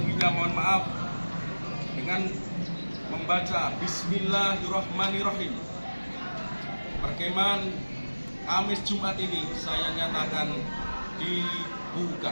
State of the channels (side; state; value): both; inverted; correlation -1.00